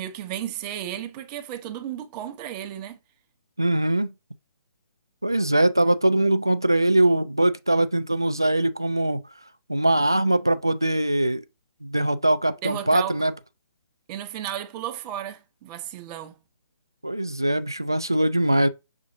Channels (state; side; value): inverted; both; correlation -0.93